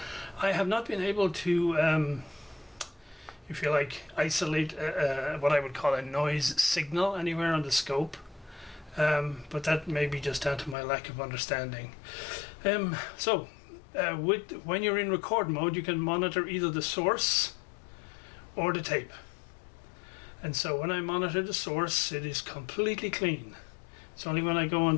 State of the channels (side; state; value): right; drops out; at 10.8 s